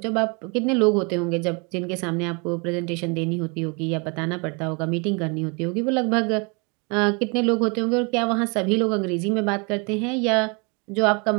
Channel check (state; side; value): quieter; left; 32.0 dB